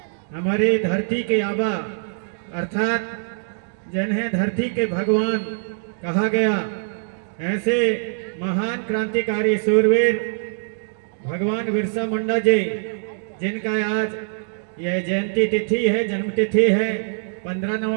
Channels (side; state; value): left; silent; digital silence